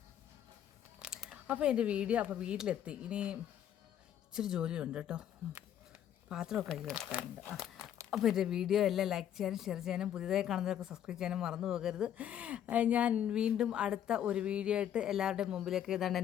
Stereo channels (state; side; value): quieter; right; 10.2 dB